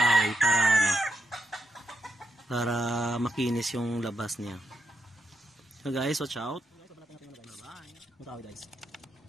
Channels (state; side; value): normal; both; correlation 0.83